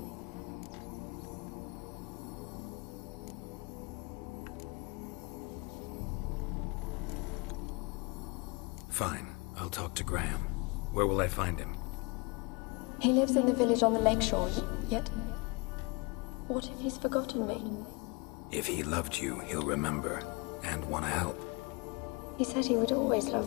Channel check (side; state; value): right; quieter; 28.1 dB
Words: Fine. I'll talk to Graham. Where will I find him? He lives in the village on the lakeshore, yet... What if he's forgotten me? If he loved you, he'll remember, and want to help. He said he would always